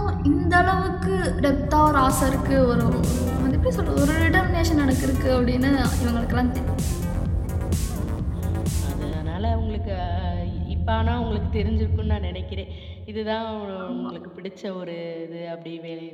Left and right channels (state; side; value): identical; both; correlation 1.00